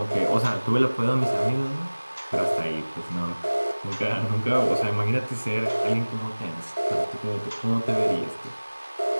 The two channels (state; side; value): inverted; both; correlation -1.00